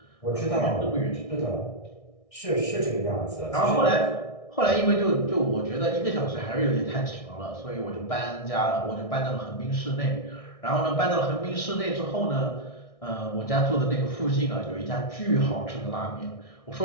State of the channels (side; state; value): right; late; 1.6 ms